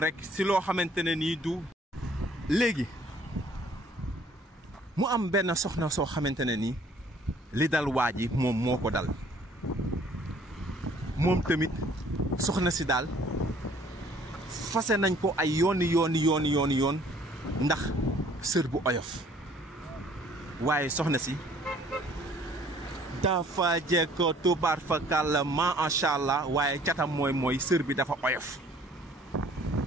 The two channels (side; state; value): both; normal; correlation 0.57